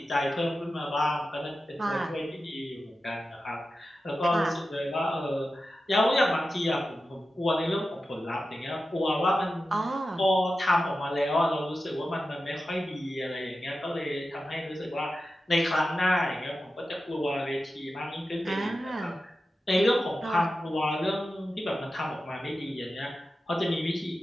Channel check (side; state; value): both; normal; correlation 0.92